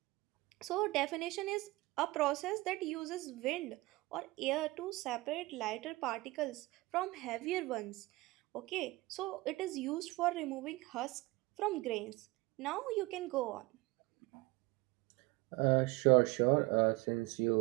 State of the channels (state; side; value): quieter; left; 21.6 dB